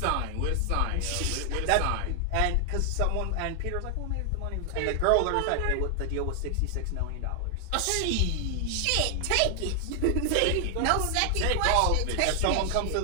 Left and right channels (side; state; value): both; different; correlation 0.00